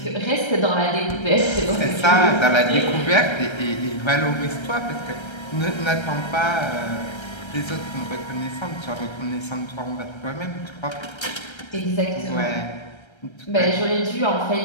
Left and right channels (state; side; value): late; right; 1.3 ms